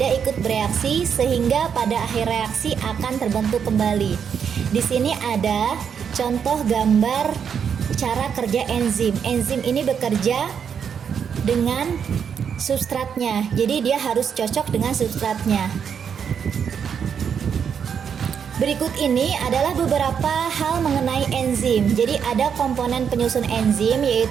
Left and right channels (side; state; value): left; quieter; 7.4 dB